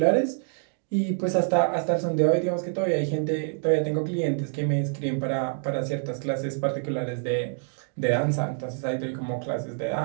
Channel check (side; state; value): left; silent; 61 dB below the other